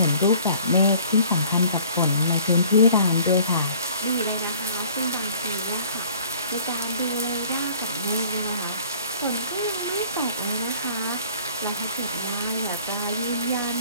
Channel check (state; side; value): inverted; both; correlation -0.53